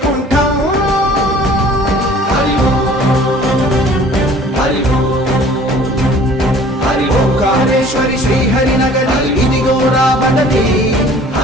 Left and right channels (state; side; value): normal; both; correlation 0.50